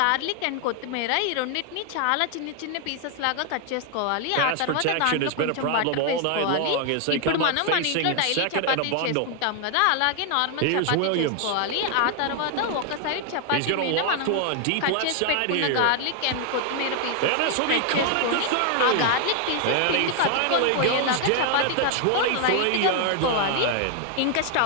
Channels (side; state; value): both; different; correlation 0.00